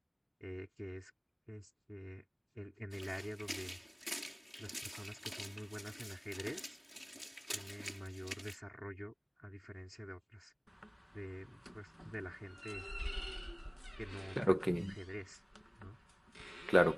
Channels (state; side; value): identical; both; correlation 1.00